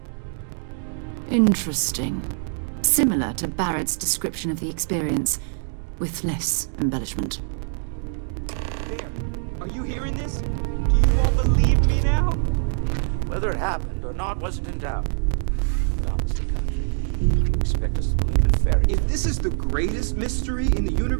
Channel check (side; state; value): left; silent; digital silence